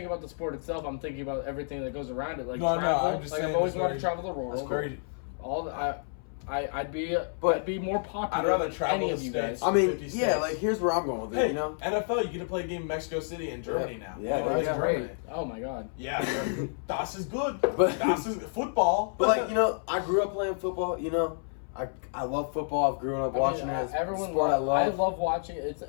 about the sport itself. I'm thinking about everything that goes around it. Like No, travel. I'm just like saying I've always it's wanted to very- travel the world. It's very. All the, I'd be more popular. I'd rather than travel any the of you states. guys. I mean, 50 yeah, states. like here's where I'm going with it, Hey, you know? NFL, you get to play a game in Mexico City and Germany now. Yeah, You know, that's it's great. Germany. Oh my god. Yeah, das is good. But- Das is football. But like, you know, I grew up playing football, you know? I love football. I've grown up watching it. It's a sport I love. I love watching it.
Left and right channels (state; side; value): silent; right; 58 dB below the other